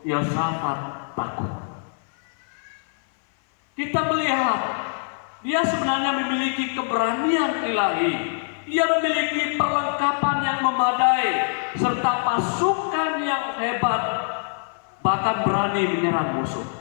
Yosafat takut. Kita melihat dia sebenarnya memiliki keberanian ilahi. Ia memiliki perlengkapan yang memadai serta pasukan yang hebat, bahkan berani menyerang musuh.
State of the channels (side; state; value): right; silent; 58 dB below the other